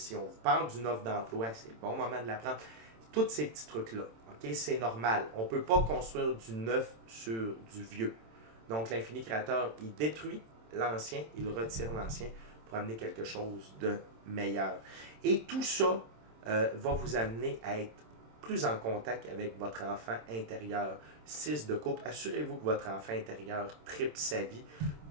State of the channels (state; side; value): late; left; 27 ms